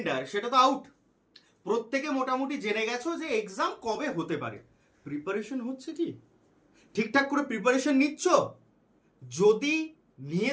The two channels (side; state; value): both; identical; correlation 1.00